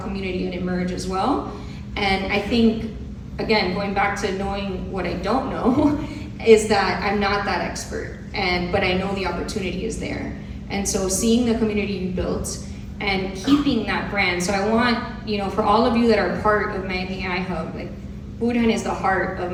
community and eMerge as well. And I think, again, going back to knowing what I don't know, is that I'm not that expert, but I know the opportunity is there. And so seeing the community you built and keeping that brand. So I want, for all of you that are part of Miami AI Hub, Burhan is the heart of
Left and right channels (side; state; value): both; identical; correlation 1.00